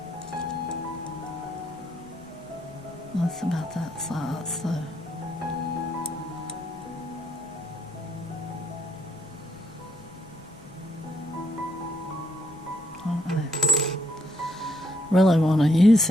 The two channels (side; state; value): left; noise; rumble, 25 dB below the sound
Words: That's about that size, so. I really want to use